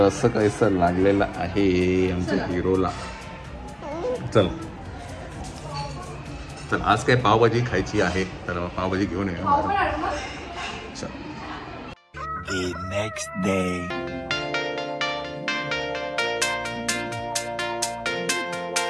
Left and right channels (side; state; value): both; identical; correlation 1.00